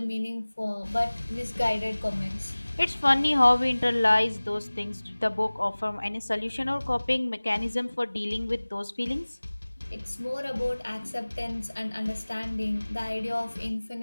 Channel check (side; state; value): both; inverted; correlation -1.00